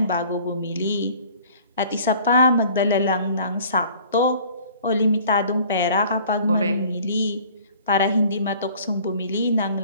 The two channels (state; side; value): inverted; both; correlation -0.50